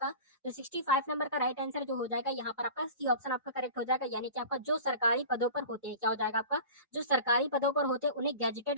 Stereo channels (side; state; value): both; inverted; correlation -0.37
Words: तो 65 नंबर का राइट आंसर जो हो जाएगा यहाँ पर आपका सी ऑप्शन आपका करेक्ट हो जाएगा, यानी कि आपका जो सरकारी पदों पर होते हैं, क्या हो जाएगा आपका, जो सरकारी पदों पर होते हैं उन्हें